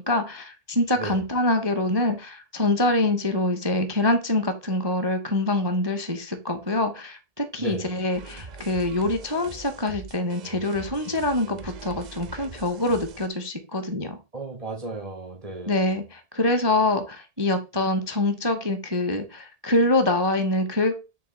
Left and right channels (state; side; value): late; left; 1.8 ms